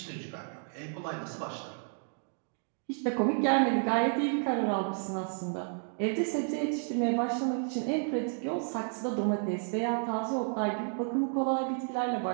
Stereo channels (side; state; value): left; silent; 57 dB below the other